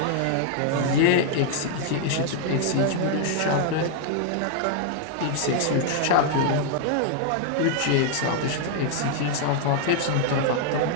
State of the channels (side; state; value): both; different; correlation 0.00